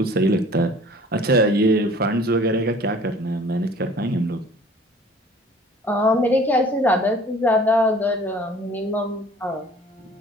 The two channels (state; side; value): normal; both; correlation 0.50